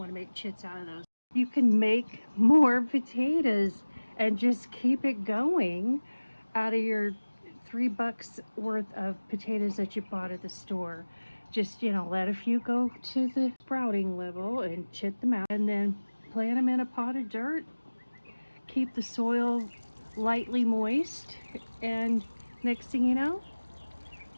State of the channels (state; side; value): inverted; both; correlation -1.00